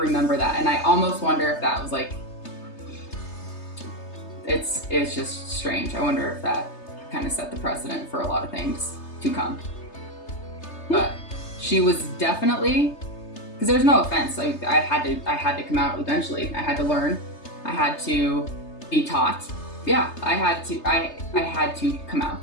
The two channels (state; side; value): late; right; 3.3 ms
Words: that, and I almost wonder if that was like, it's just strange. I wonder if that kind of set the precedent for a lot of things to come. But she was definitely, because there's no offense. I had to come out eventually. I had to learn. I had to be taught. Yeah, I had to come